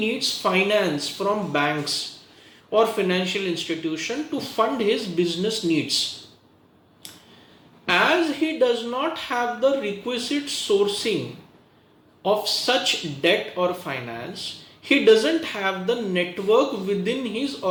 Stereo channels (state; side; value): identical; both; correlation 1.00